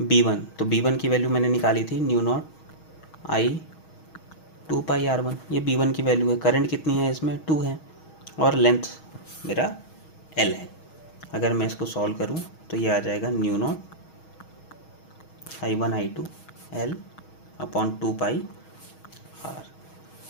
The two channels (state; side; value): late; right; 6.3 ms